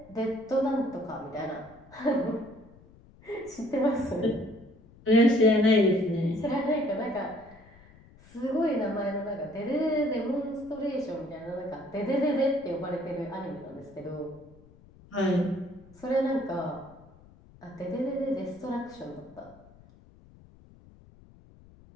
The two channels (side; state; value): left; noise; rumble, 24 dB below the sound